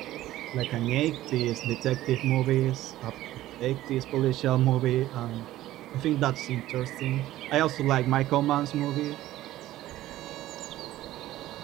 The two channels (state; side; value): quieter; left; 14.9 dB